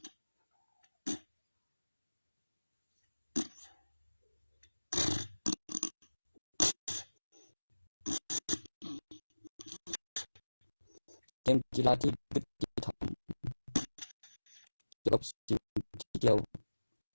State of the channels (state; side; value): inverted; both; correlation -1.00